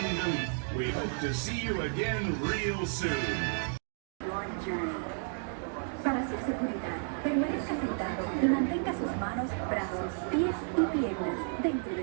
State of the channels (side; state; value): left; silent; 56 dB below the other